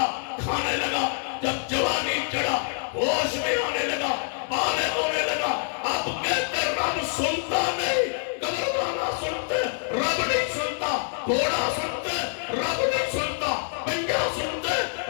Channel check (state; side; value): silent; right; digital silence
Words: کھانے لگا۔ جب جوانی چڑھا، ہوش میں آنے لگا، بالغ ہونے لگا، اب کہتے رب سنتا نہیں، قبرخانہ سنتے رب نہیں سنتا، گھوڑا سنتے رب نہیں سنتا، پنجا سنتے